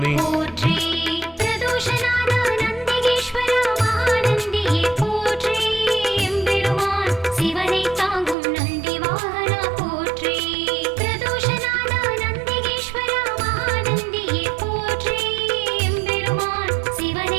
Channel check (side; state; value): left; drops out; at 8.3 s